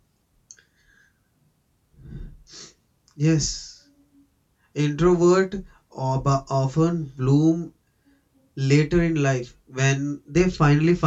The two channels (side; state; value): both; identical; correlation 1.00